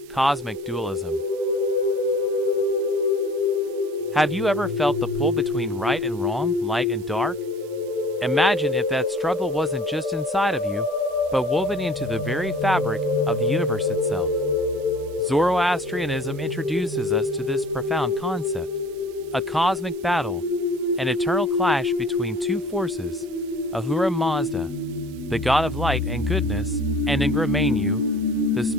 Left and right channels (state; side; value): noise; right; hiss, 24 dB below the sound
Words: Cosmic Dualism. Have you ever felt the pull between right and wrong, light and dark? Imagine if that struggle wasn't just inside of you, but woven into the very fabric of the universe itself. Zoroastrianism introduces us to this profound concept: a cosmic battle, an eternal clash between two forces, Ahura Mazda, the god of light and goodness, and Ingra Mainyu, the